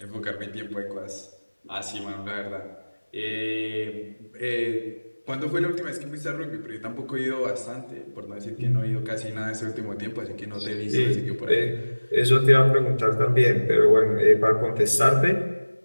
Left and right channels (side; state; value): both; inverted; correlation -1.00